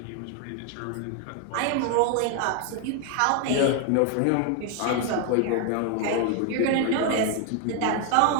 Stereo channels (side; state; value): both; different; correlation 0.01